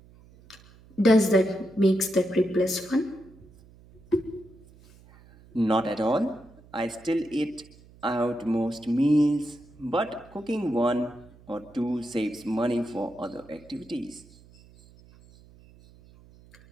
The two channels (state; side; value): noise; right; hum, 25 dB below the sound